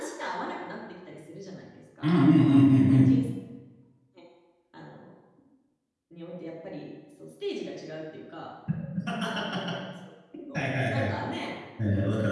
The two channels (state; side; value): identical; both; correlation 1.00